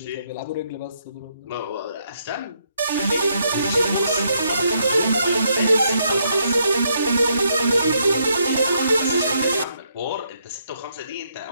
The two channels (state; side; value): inverted; both; correlation -0.75